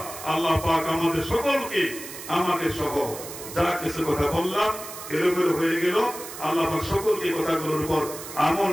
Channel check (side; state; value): right; noise; hiss, 12 dB below the sound